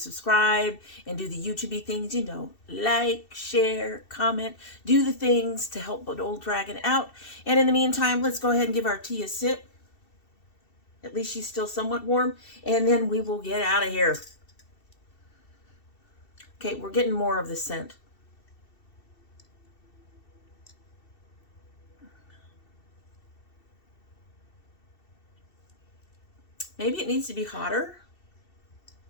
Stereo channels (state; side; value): late; right; 2.7 ms